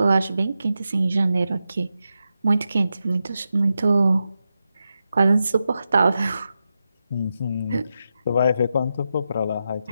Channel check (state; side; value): inverted; both; correlation -0.89